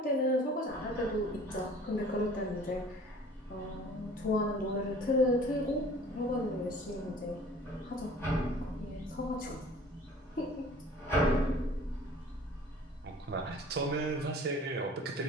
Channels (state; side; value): normal; both; correlation 0.48